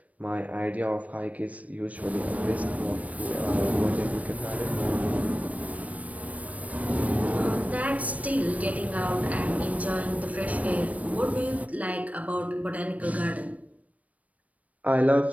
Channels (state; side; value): late; left; 0.068 ms